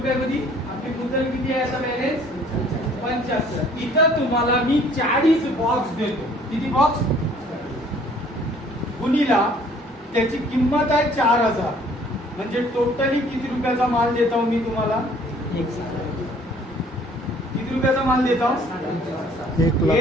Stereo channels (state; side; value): normal; both; correlation 0.56